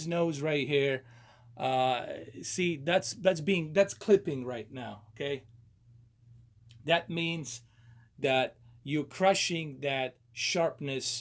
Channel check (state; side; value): identical; both; correlation 1.00